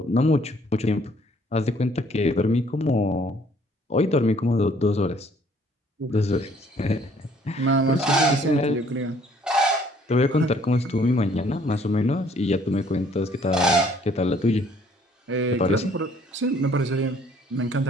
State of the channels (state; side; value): normal; both; correlation 0.61